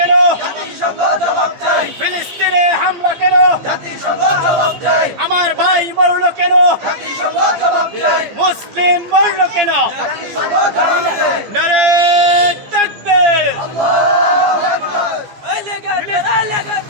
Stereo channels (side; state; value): left; late; 15 ms